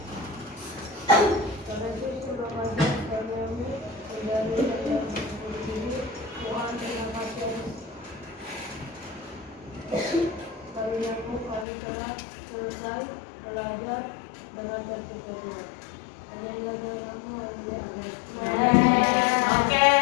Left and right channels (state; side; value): drops out; right; at 11.7 s